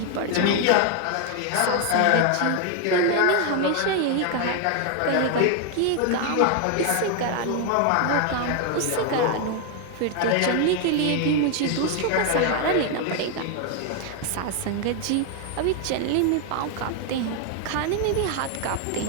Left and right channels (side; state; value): both; different; correlation 0.01